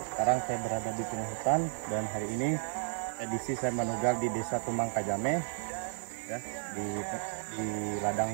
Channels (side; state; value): left; silent; digital silence